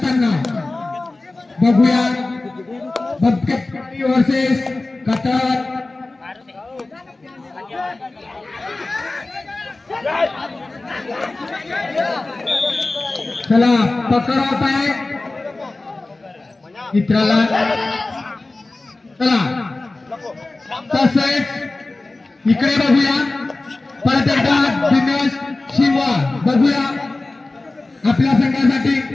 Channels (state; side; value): quieter; right; 3.1 dB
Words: बघूया बबके वर्सेस कतार चला पकड आहे मित्राला चला तसेच इकडे बघूया परत एकदा दिनेश शिवा बघूया आपल्या संघासाठी